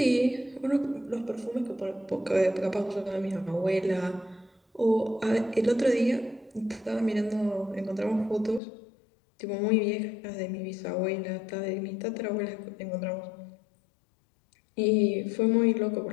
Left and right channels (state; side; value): drops out; right; at 8.6 s